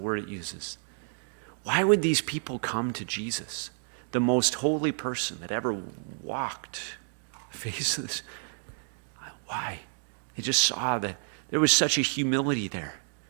it uses. Why would these people come to Jesus, the most holy person that ever walked the face of this? Why? They just saw that there was such a humility there.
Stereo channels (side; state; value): left; silent; 58 dB below the other